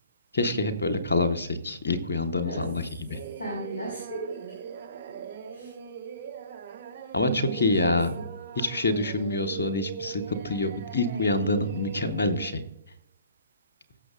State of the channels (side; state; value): both; inverted; correlation -0.52